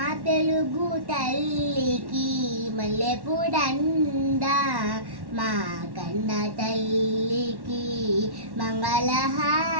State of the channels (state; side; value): late; left; 1.1 ms